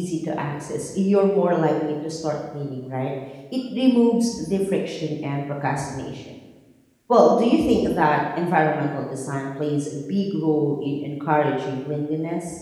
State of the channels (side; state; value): both; identical; correlation 1.00